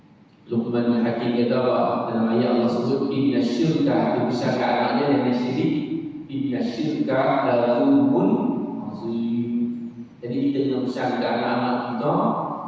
Luqman Hakim kata apa? Dalam ayat Allah sebut inna syirka, dia besarkan anaknya dengan syirik. Inna syirka la zulmun azim. Jadi kita kena besarkan anak-anak kita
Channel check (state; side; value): identical; both; correlation 1.00